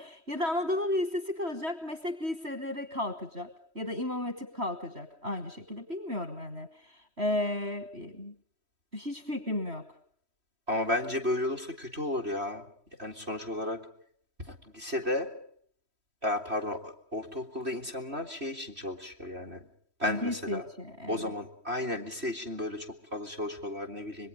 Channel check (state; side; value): late; left; 3.1 ms